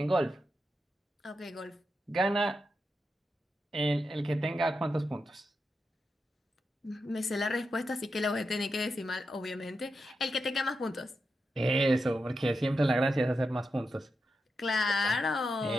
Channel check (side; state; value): both; normal; correlation 0.87